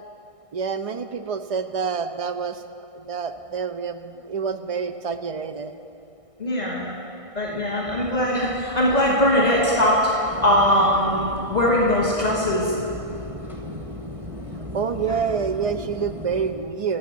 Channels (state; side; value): late; left; 1.6 ms